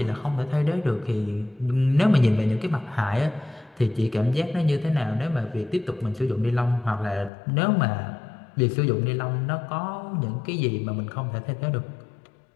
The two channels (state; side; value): drops out; right; at 7.3 s